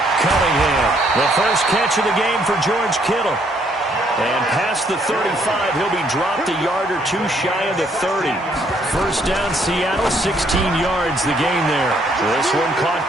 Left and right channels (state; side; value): normal; both; correlation 0.68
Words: Cunningham. The first catch of the game for George Kittle. And past the 35, he'll be dropped a yard or 2 shy of the 30. 1st down, Seattle, 16 yards the gain there. This one caught